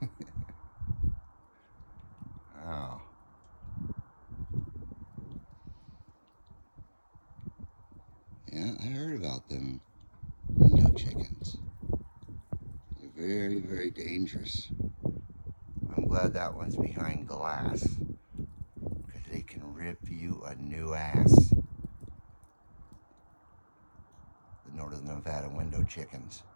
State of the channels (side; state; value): both; inverted; correlation -1.00